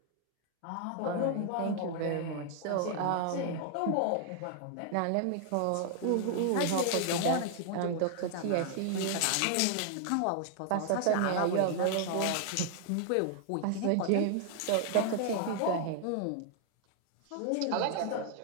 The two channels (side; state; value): both; different; correlation 0.00